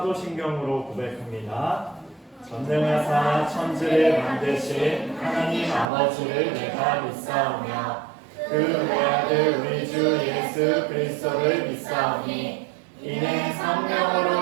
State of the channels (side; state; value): left; drops out; at 5.9 s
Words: 고백합니다. 전능하사 천지를 만드신 하나님 아버지를 내가 믿사오며 그 외아들 우리 주 예수 그리스도를 믿사오니 이는